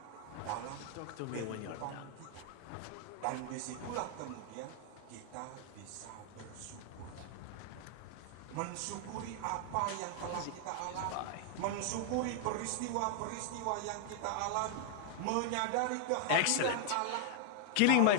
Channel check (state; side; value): different; both; correlation 0.00